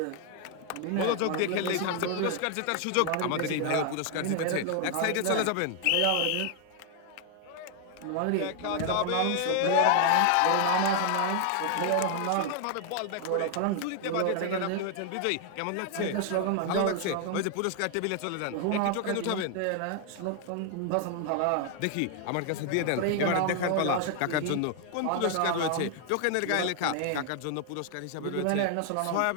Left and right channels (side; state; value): both; different; correlation 0.00